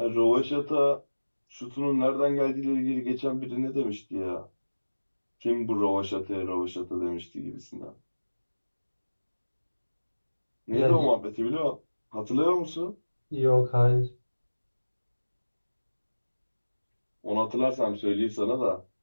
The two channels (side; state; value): both; inverted; correlation -1.00